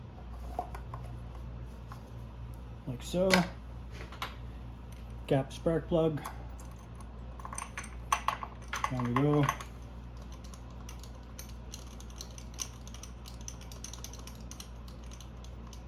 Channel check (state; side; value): identical; both; correlation 1.00